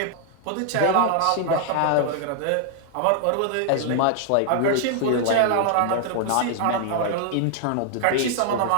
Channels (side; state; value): both; different; correlation 0.00